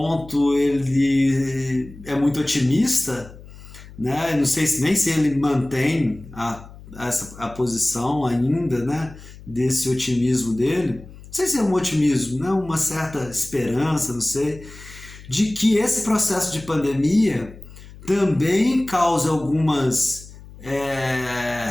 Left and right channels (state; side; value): noise; left; hum, 18 dB below the sound